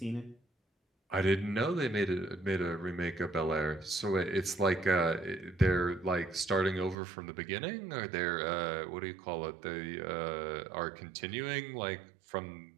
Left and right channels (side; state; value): left; drops out; at 7.0 s